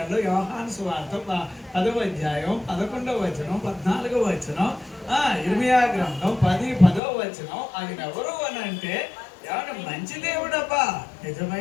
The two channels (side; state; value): right; drops out; at 7.0 s